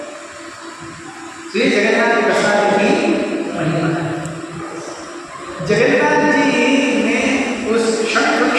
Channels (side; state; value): both; identical; correlation 1.00